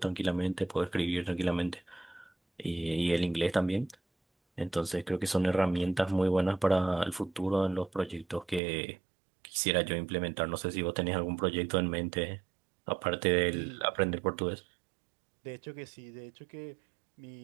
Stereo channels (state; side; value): drops out; left; at 8.6 s